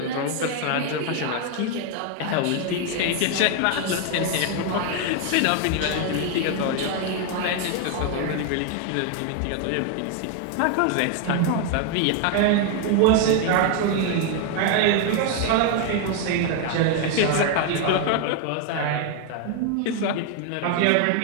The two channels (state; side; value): different; both; correlation 0.01